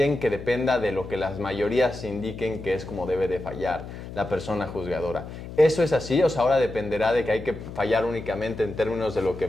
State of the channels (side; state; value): left; noise; hum, 11 dB below the sound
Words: que dependa de lo que las mayorías indiquen que es como debe de fallar la persona juzgadora. ¿Eso es así? O sea, ahora dependerá de que hay que fallar únicamente en términos de lo que